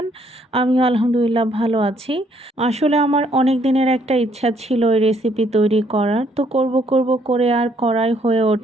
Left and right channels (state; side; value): normal; both; correlation 0.67